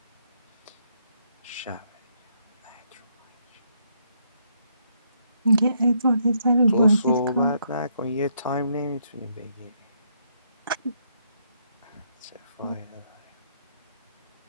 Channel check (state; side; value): inverted; both; correlation -0.74